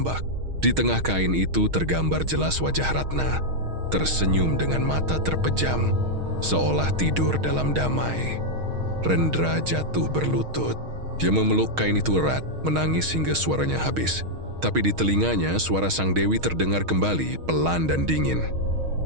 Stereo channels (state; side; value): late; left; 6.4 ms